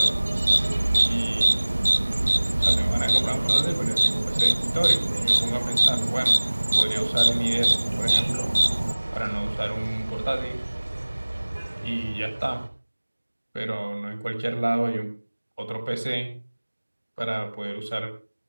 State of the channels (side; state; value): both; inverted; correlation -1.00